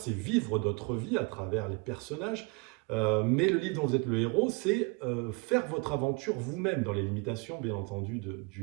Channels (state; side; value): quieter; left; 29.6 dB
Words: vivre d'autres vies à travers les personnages. Mais le livre dont vous êtes le héros, c'est faire votre aventure vous-même, dans les limitations, bien entendu, du